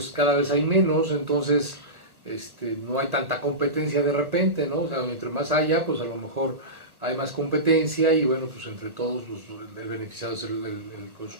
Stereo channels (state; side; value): late; left; 1.2 ms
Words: cada vez hay menos, entonces no hay tanta competencia de repente, ¿no? O sea, entre más haya, pues a lo mejor hay más competencia y bueno, pues entre todos pues, el beneficiado es el